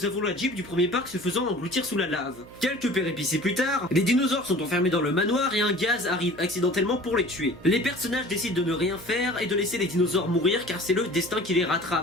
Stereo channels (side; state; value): right; noise; hum, 20 dB below the sound